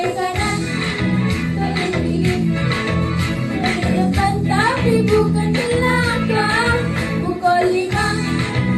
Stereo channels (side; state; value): both; identical; correlation 1.00